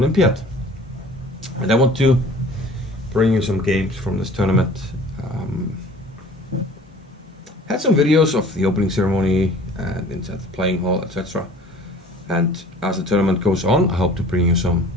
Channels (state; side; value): normal; both; correlation 0.47